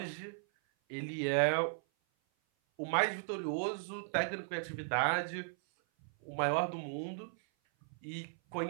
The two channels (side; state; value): left; silent; 54 dB below the other